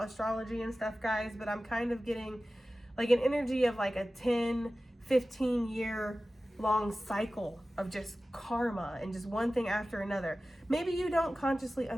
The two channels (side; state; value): both; normal; correlation 0.96